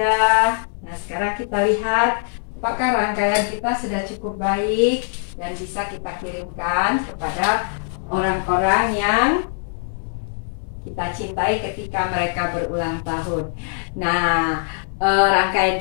Nah, sekarang kita lihat apakah rangkaian kita sudah cukup baik dan bisa kita kirimkan kepada orang-orang yang kita kita cintai ketika mereka berulang tahun. Nah, rangkaian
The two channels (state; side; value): silent; right; 64 dB below the other